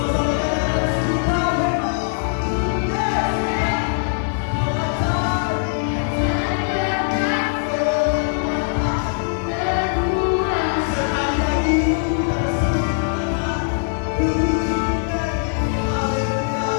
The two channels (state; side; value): silent; right; digital silence